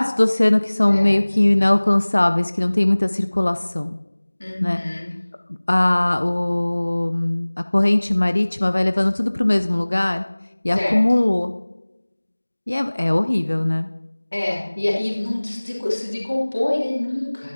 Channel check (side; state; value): both; inverted; correlation -1.00